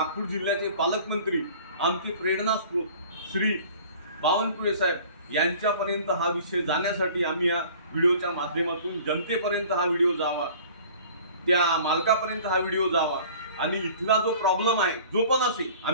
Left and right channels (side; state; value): both; inverted; correlation -0.47